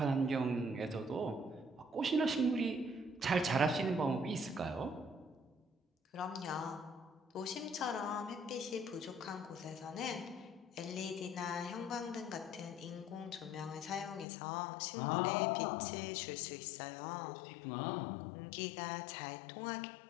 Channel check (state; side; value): drops out; right; at 14.2 s